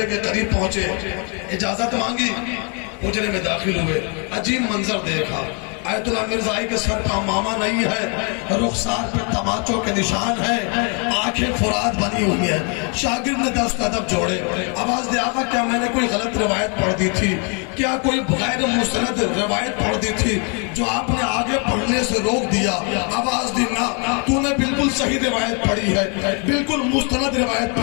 کے قریب پہنچے، اجازت مانگی، حجرے میں داخل ہوئے، عجیب منظر دیکھا۔ آیت اللہ مرزائی کے سر پہ امامہ نہیں ہے، رخسار پہ تماچوں کے نشان ہیں، آنکھیں فرات بنی ہوئی ہیں۔ شاگرد نے دست ادب جوڑے، آواز دیا آقا کیا میں نے کوئی غلط روایت پڑھ دی تھی؟ کیا کوئی غیر مستند روایت پڑھ دی تھی جو آپ نے آگے پڑھنے سے روک دیا؟ آواز دی نہ، تو نے بالکل صحیح روایت پڑھی ہے، بالکل مستند روایت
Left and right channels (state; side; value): quieter; right; 36.4 dB